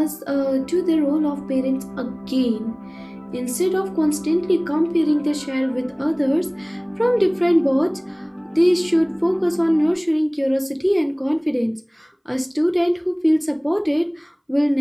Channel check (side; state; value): both; identical; correlation 1.00